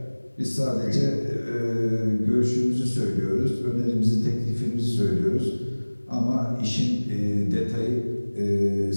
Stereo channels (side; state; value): both; inverted; correlation -1.00